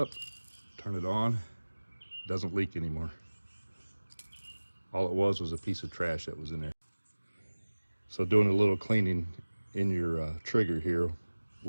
turn it on, doesn't leak anymore. All it was a piece of trash that was in there. So doing a little cleaning in your trigger here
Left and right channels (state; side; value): inverted; both; correlation -1.00